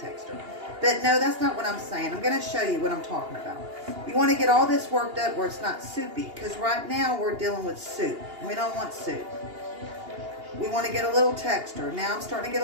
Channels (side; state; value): left; late; 2.8 ms